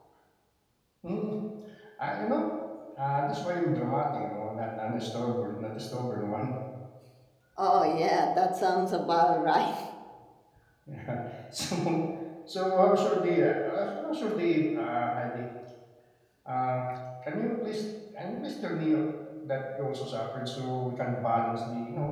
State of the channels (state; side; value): identical; both; correlation 1.00